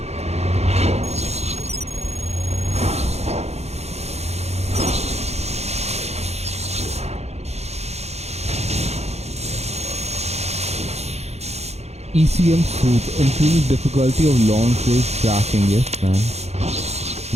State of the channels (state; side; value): late; left; 0.31 ms